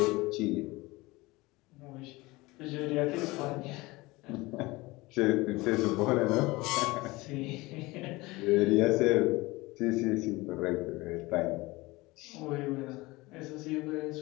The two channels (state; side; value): quieter; right; 21.7 dB